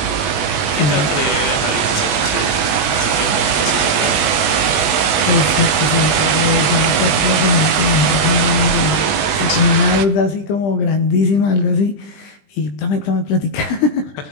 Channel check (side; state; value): right; late; 20 ms